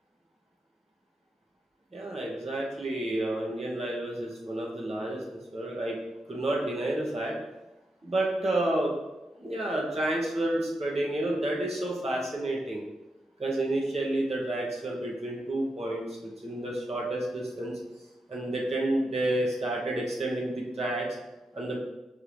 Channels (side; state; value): both; normal; correlation 0.84